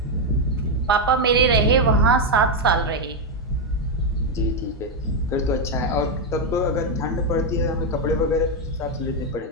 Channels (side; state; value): both; normal; correlation 0.04